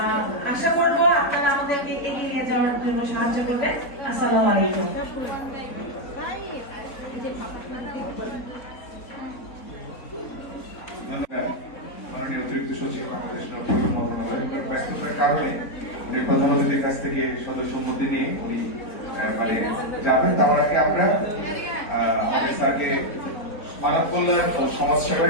আশা করবো আপনারা আমাদেরকে এগিয়ে নিয়ে যাওয়ার জন্য সাহায্য করবেন। আসসালামু আলাইকুম। মাননীয় অতিরিক্ত সচিব বাংলাদেশ ব্যস্ততার কারণে উনি প্রধান অতিথির কাছ থেকে সদস্য সম্মতি নিয়ে উনি মানে যাবেন। তার আগে আমরা আমাদের স্যারকে মানব কল্যাণ ও সমাজ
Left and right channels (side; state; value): right; late; 4.0 ms